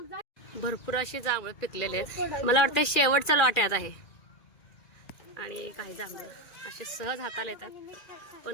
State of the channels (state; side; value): late; right; 2.4 ms